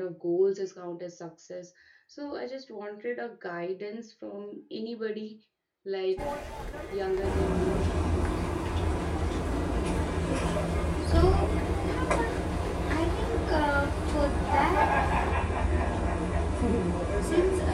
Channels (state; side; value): identical; both; correlation 1.00